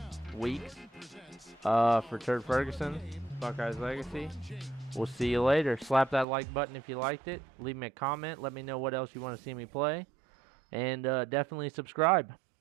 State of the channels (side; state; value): left; drops out; at 6.2 s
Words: weeks for Turd Ferguson, Buckeyes Legacy. We'll see you later. Slap that like button if you liked it. Leave me a comment. Let me know what else you want to see me play. And definitely subscribe.